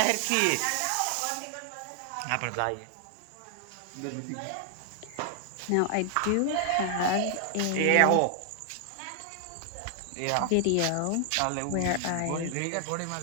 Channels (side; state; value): both; different; correlation 0.00